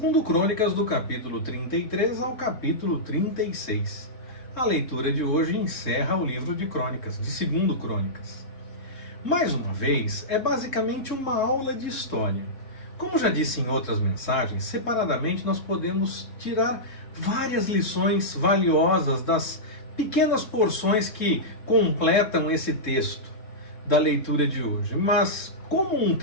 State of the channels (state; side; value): late; right; 3.7 ms